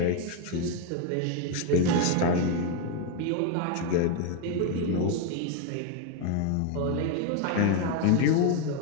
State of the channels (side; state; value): both; different; correlation 0.02